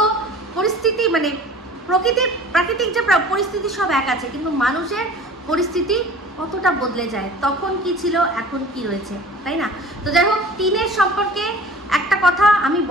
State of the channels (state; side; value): normal; both; correlation 0.44